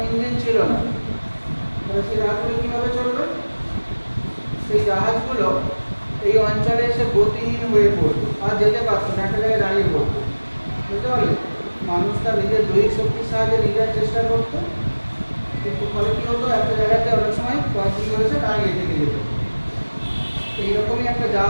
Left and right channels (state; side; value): inverted; both; correlation -1.00